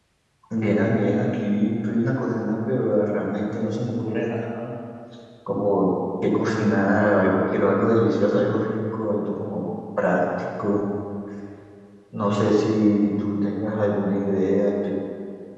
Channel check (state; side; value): identical; both; correlation 1.00